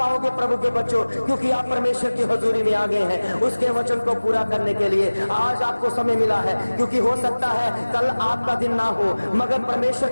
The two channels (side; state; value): both; inverted; correlation -1.00